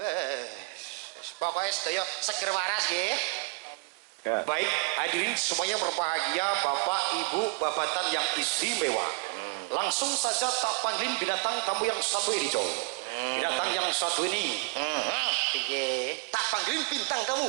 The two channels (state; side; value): quieter; left; 32.9 dB